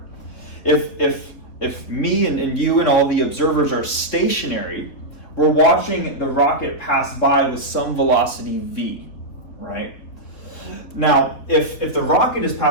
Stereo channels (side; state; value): right; late; 4.0 ms